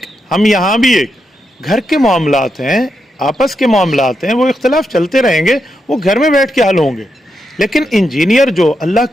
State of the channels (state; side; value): normal; both; correlation 0.84